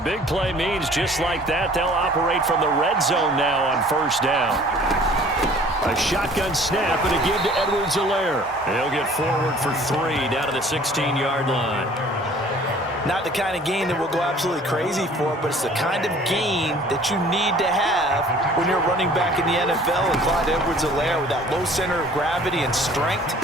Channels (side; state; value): both; normal; correlation 0.51